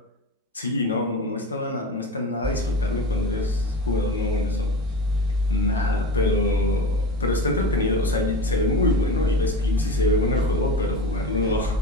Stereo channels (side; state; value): both; normal; correlation 0.29